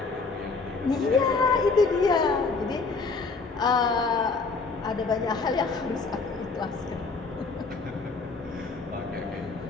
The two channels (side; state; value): right; quieter; 4.2 dB